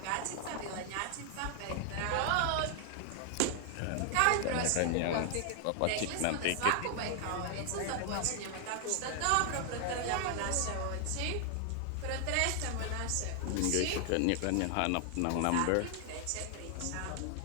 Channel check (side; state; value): both; different; correlation 0.00